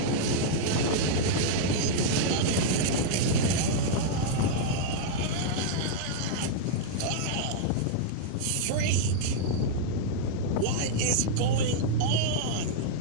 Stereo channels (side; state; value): both; different; correlation -0.01